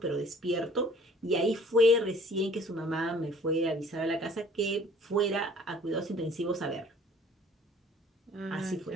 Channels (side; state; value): both; normal; correlation 0.53